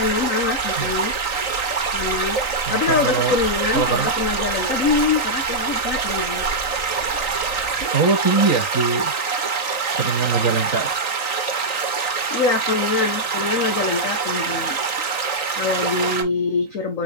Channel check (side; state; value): right; late; 3.9 ms